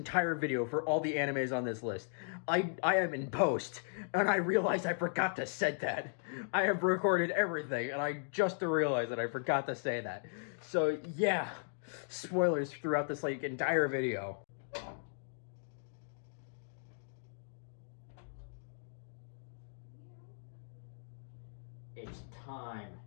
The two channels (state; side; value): silent; right; digital silence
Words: video for all the animes on this list. I am in post, and I realized I forgot to say that. I have recorded everything, and I just realized that I forgot to say that. So yeah, spoilers throughout this like entire video. It's time,